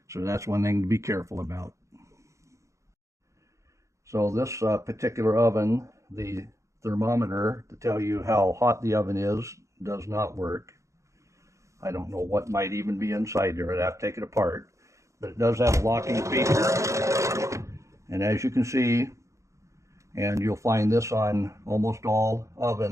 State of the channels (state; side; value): late; left; 0.15 ms